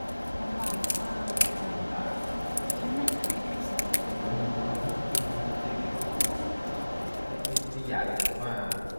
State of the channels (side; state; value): both; inverted; correlation -1.00